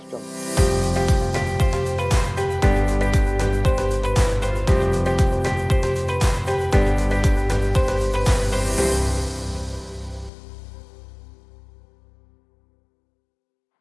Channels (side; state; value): right; drops out; at 10.3 s